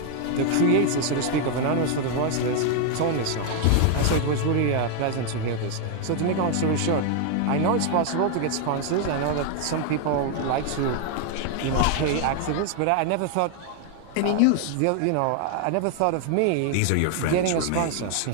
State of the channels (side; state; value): both; different; correlation 0.00